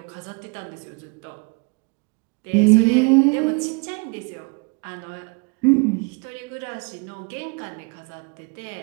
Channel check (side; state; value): left; quieter; 32.2 dB